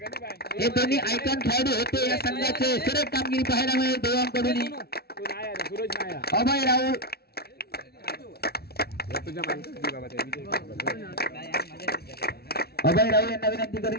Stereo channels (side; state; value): right; late; 0.45 ms